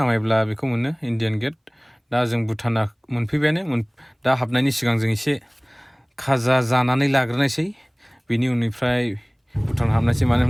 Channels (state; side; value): identical; both; correlation 1.00